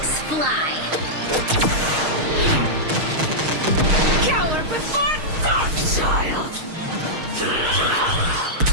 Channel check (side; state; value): left; late; 6.4 ms